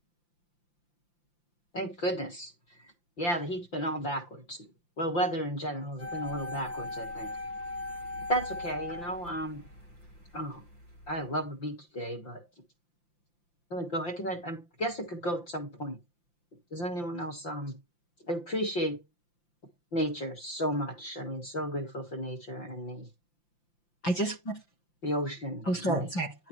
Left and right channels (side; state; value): right; late; 5.8 ms